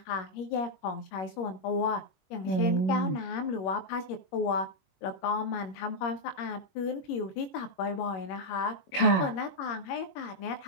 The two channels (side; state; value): right; late; 21 ms